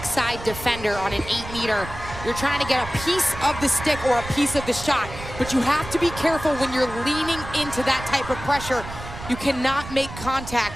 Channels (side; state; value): right; noise; rumble, 12 dB below the sound